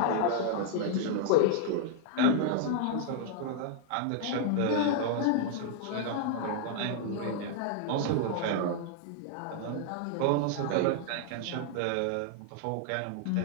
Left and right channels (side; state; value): both; different; correlation -0.01